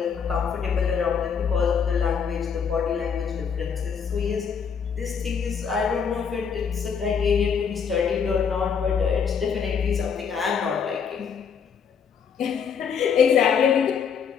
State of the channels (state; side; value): quieter; right; 6.7 dB